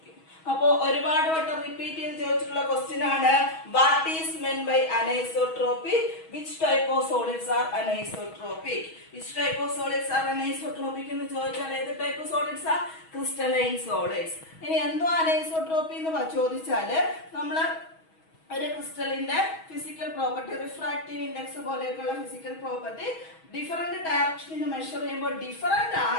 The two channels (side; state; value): right; late; 6.2 ms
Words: അപ്പോ ഒരുപാട് വട്ടം റിപ്പീറ്റ് ചെയ്ത് ചോദിച്ചിട്ടുള്ള ക്വസ്റ്റ്യൻ ആണ്, what is meant by anisotropic? Which type of solids are anisotropic? Which type of solids are anisotropic എന്ന് ചോദിച്ചാൽ ഏത് ടൈപ്പ് സോളിഡ്സ് ആ? Crystalline solids. ഇനി എന്തോ അനൈസോട്രോപ്പി എന്ന് ചോദിച്ചാല് നമ്മള് ഒരു ക്രിസ്റ്റലിന്റെ ഫിസിക്കൽ പ്രോപ്പർട്ടി, റിഫ്രാക്റ്റീവ് ഇൻഡെക്സ് പോലെയൊക്കെയുള്ള ഫിസിക്കൽ പ്രോപ്പർട്ടി ഡിഫറെന്റ് ഡയറക്ഷനിൽ മെഷർ ചെയ്യുമ്പോൾ ഡിഫറെന്റ്